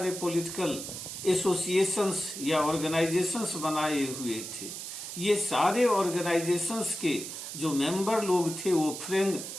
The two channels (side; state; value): right; noise; hiss, 8 dB below the sound